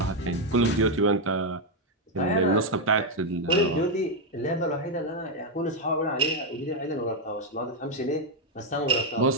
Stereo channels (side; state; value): both; normal; correlation 0.02